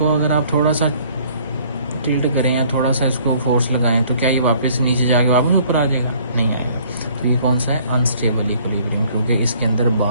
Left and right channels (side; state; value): both; inverted; correlation -0.58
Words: अगर आप थोड़ा सा टिल्ट करें या थोड़ा सा इसको फोर्स लगाएं तो क्या ये वापस नीचे जाके वापस ऊपर आ जाएगा? नहीं आएगा। तो ये कौन सा है, अनस्टेबल इक्विलिब्रियम, क्योंकि इसके अंदर